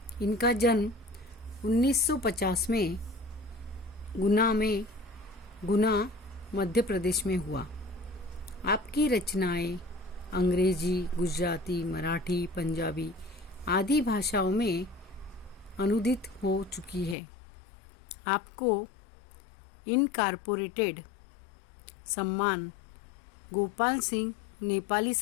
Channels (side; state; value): right; drops out; at 17.2 s